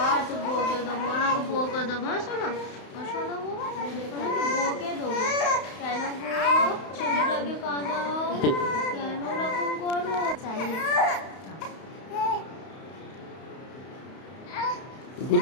আচ্ছা বকে দেবো, ওনাকে বকে দেবো, শোনো শোনো ওনাকে বকে দেবো। কেন গো ছেলেটাকে কাঁদাও, কেন ওরকম করো?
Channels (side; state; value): right; late; 31 ms